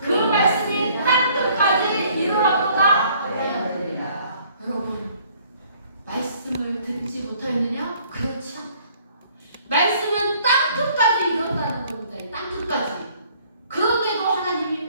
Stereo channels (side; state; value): both; inverted; correlation -0.59